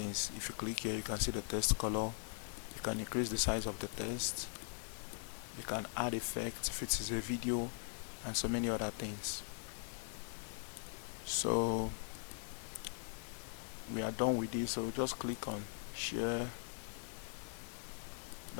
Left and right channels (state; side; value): silent; right; 50 dB below the other